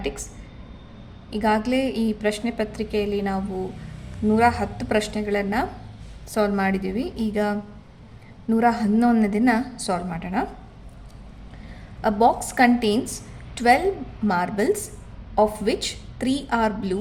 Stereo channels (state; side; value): identical; both; correlation 1.00